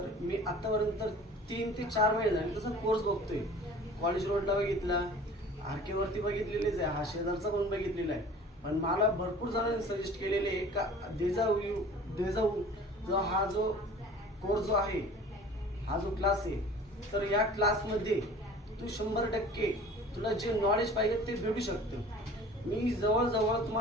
मी आत्तापर्यंत 3 ते 4 महिने झाले तसा कोर्स बघतोय. कॉलेज रोडला बघितला, आरकेवरती बघितलेलेच आहे, हा शेजारचा पण बघितलेला आहे. पण मला भरपूर जणांनी सजेस्ट केलेले आहे का देजाऊ जो हा जो कोर्स जो आहे, हा जो क्लास आहे, तर या क्लासमध्ये तू 100% तुला जे नॉलेज पाहिजे ते भेटू शकतं. मी जवळजवळ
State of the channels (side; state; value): both; normal; correlation 0.45